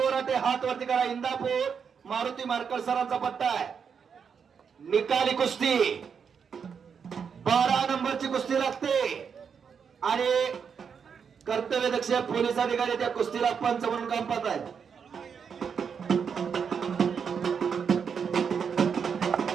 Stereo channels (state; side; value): quieter; left; 6.6 dB